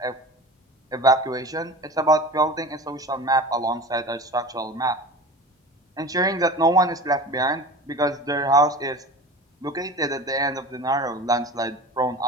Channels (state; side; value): normal; both; correlation 0.35